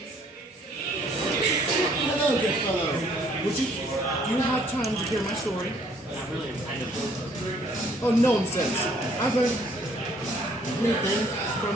Hello, good fellow. Do you have time to hear my story? Not really, I'm kind of. Oh, nonsense. I've learned many things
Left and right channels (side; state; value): both; normal; correlation 0.62